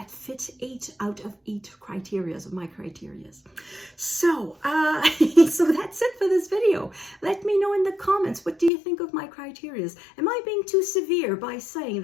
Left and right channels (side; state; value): right; drops out; at 8.7 s